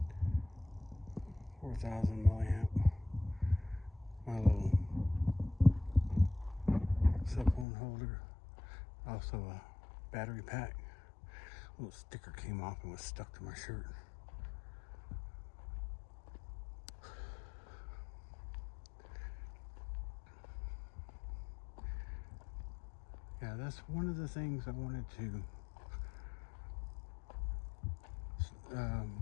4,000 milliamp, my little cell phone holder, also a battery pack. A little sticker came off and was stuck to my shirt. Yeah, that's one of the things I wanted to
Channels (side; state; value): right; drops out; at 7.7 s